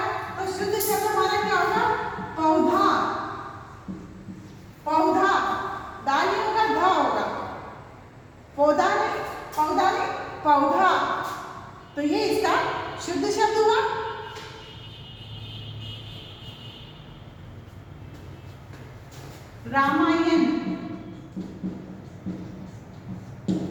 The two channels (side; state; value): both; identical; correlation 1.00